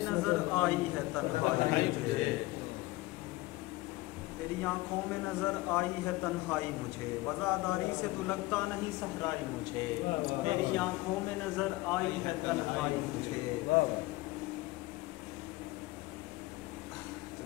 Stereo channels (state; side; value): quieter; right; 20.0 dB